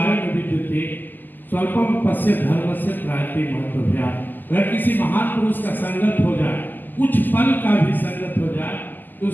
विद्युते स्वल्पम पश्य धर्मस्य प्रायते महत्वभ्या। अगर किसी महान पुरुष का संगत हो जाए, कुछ पल का भी संगत हो जाए, तो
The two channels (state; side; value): late; right; 0.088 ms